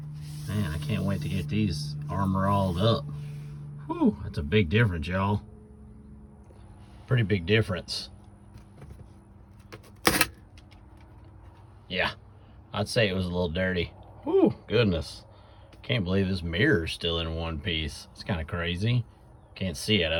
Man, I can't wait to get these Armor All'd up. Whew, that's a big difference, y'all. Pretty big difference. Yeah, I'd say it was a little dirty. Whew, goodness. Can't believe this mirror's still in one piece. It's kind of crazy. Can't see out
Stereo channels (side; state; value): both; identical; correlation 1.00